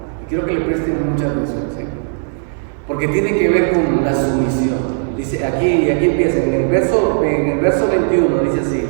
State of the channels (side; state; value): left; silent; digital silence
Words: Y quiero que le presten mucha atención, ¿sí? Porque tiene que ver con la sumisión. Dice aquí empieza, en el verso 21 dice así: